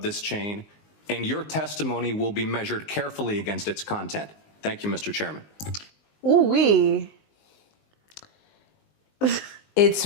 chain, and your testimony will be measured carefully against its content. Thank you, Mr. Chairman. Ooh-wee. It's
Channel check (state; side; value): late; right; 19 ms